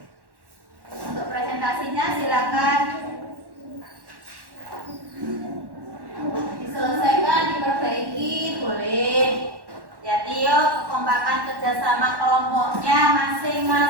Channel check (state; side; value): late; left; 1.1 ms